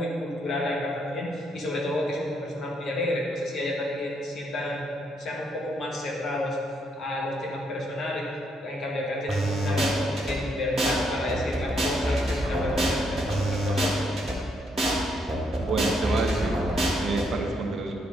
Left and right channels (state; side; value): normal; both; correlation 0.75